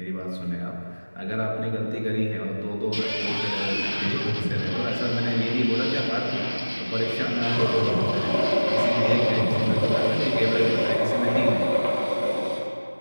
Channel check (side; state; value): both; inverted; correlation -1.00